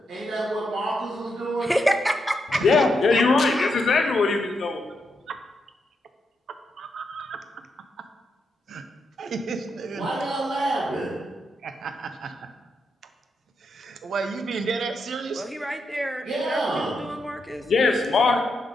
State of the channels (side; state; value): both; normal; correlation 0.83